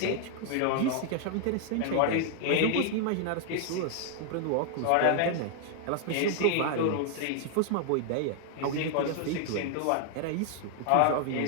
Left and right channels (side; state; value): both; different; correlation 0.00